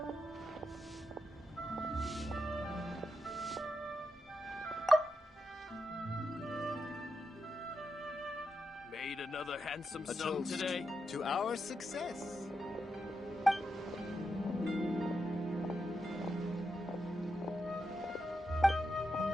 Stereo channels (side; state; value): both; normal; correlation 0.86